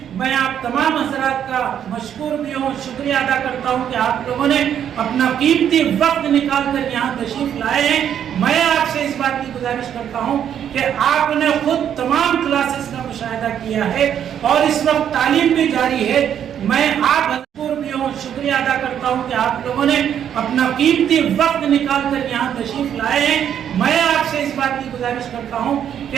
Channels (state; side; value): quieter; left; 9.3 dB